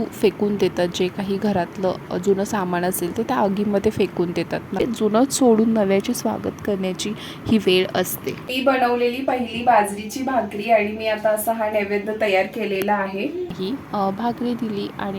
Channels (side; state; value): both; identical; correlation 1.00